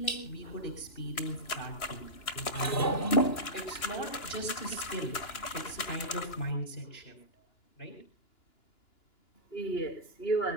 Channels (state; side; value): late; right; 2.9 ms